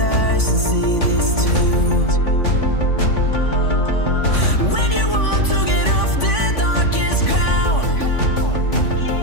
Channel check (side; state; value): right; late; 3.5 ms